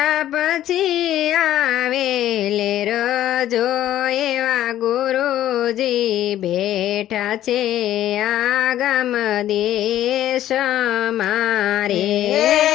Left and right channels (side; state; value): right; quieter; 12.6 dB